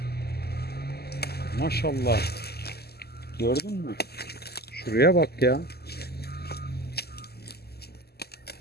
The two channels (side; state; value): right; late; 0.46 ms